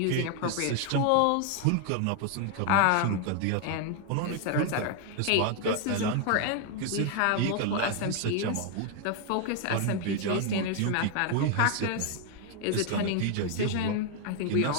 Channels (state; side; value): different; both; correlation 0.00